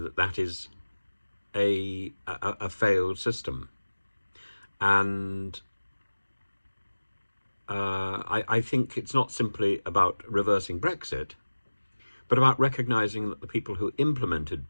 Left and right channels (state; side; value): inverted; both; correlation -1.00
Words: that is a failed system. And I think it's not simply about reversing Brexit, but about recognising that the people who implemented